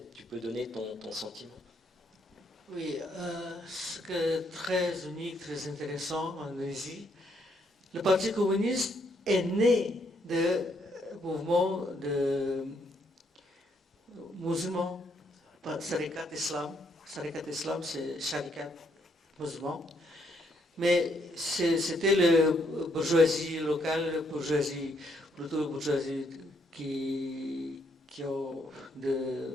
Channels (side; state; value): both; normal; correlation 0.73